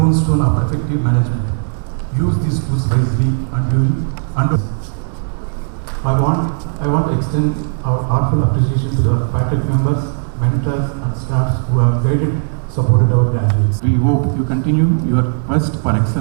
of effective management. Use these tools wisely and I want to extend our heartfelt appreciation to the faculty members, mentors and staffs who have guided, supported our graduates. We hope you continue your quest for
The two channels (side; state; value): left; silent; digital silence